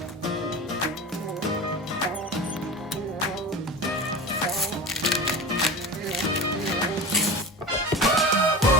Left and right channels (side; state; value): both; normal; correlation 0.30